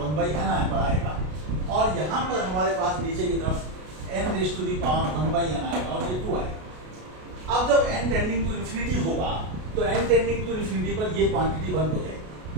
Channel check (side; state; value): left; late; 33 ms